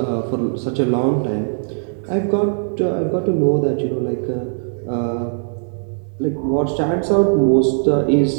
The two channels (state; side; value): silent; left; digital silence